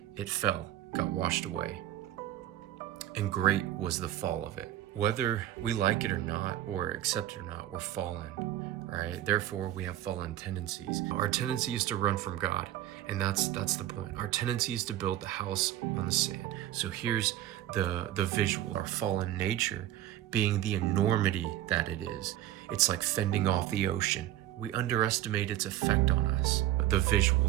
It fell, got washed away. And great was the fall of it. Whether we like it or not, or accept it or not, we're fallen, right? Therefore, we have fallen tendencies. Our tendency is to run from God, and that's the point. Our tendency is to build the house on the sand. So here's the visual. Our fallen nature being the enormity that it is. It's like fending off the ocean. We underestimate its effect on us. The visual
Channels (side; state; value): left; quieter; 13.3 dB